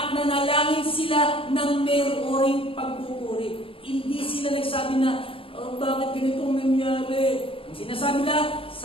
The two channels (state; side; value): late; right; 0.26 ms